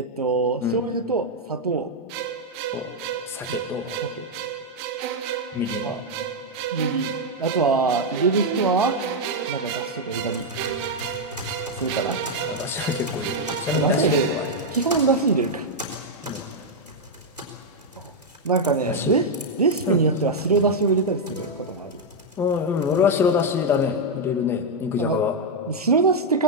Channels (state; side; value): normal; both; correlation 0.00